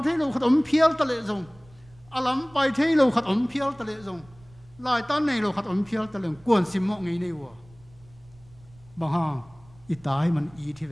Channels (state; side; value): noise; right; rumble, 26 dB below the sound